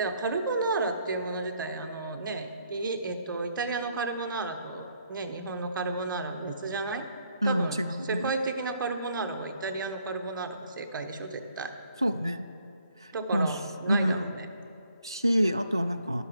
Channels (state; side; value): inverted; both; correlation -0.68